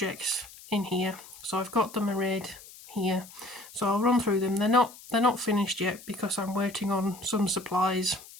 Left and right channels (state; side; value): noise; left; hiss, 19 dB below the sound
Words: in here. So I've got them arrayed here. So I'll run through them. They're not finished yet because I'm waiting on some supplies,